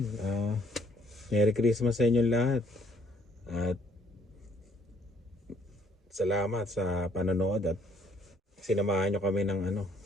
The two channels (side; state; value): both; normal; correlation 0.64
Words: Merry Christmas sa inyong lahat. At salamat sa panonood at sinamahan nyo kami ng ano,